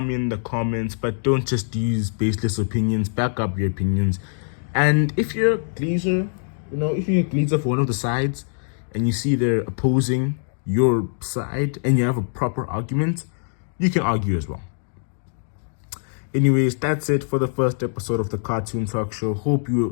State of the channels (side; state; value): right; silent; digital silence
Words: me in the comments, but don't just use baseless opinions. Back up your opinions. And if you're a Glazer, if you're a Glazer for one of the sides and you see they're opposing your side and you have a proper argument, you can argue as well. Anyways, that's it for the first episode of the Cartoon Talk Show. Hope